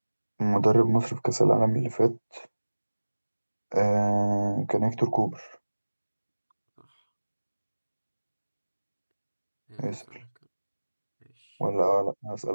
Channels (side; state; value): both; inverted; correlation -1.00